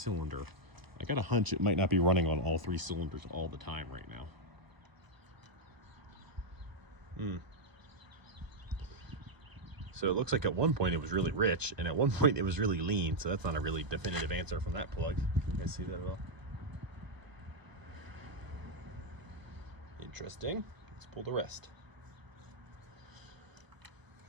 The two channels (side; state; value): left; late; 1.0 ms